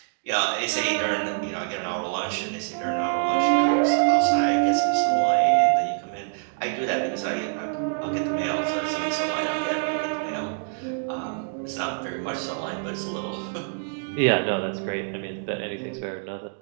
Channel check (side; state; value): left; silent; digital silence